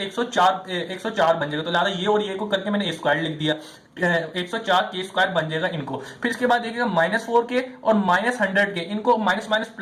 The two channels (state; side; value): identical; both; correlation 1.00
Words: बन जाएगा। तो लिहाजा ये और ये को करके मैंने A स्क्वायर लिख दिया, 104 के स्क्वायर बन जाएगा इनको। फिर इसके बाद देखिएगा -4k और -100k, इनको माइनस माइनस